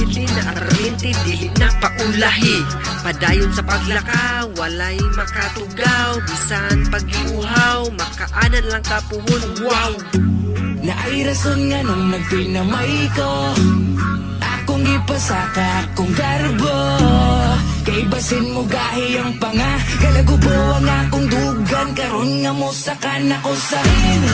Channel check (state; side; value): identical; both; correlation 1.00